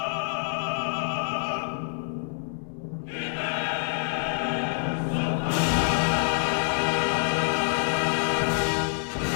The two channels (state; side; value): silent; right; digital silence